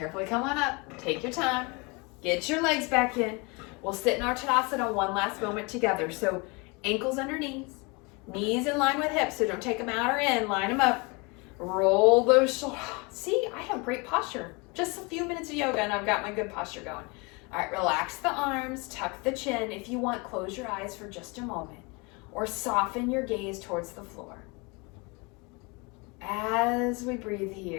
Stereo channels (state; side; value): quieter; right; 28.7 dB